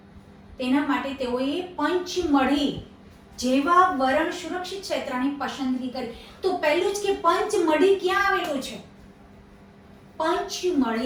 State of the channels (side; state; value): both; identical; correlation 1.00